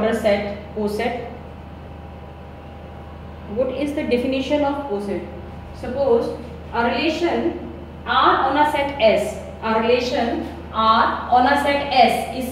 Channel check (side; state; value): both; identical; correlation 1.00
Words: set, coset. What is the definition of coset? Suppose a relation R on a set S. A relation R on a set S